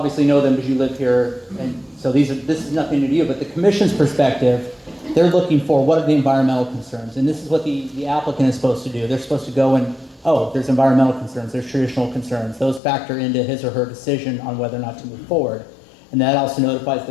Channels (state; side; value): drops out; right; at 12.8 s